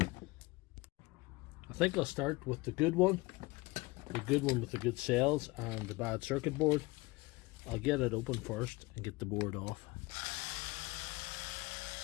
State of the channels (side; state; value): right; quieter; 23.0 dB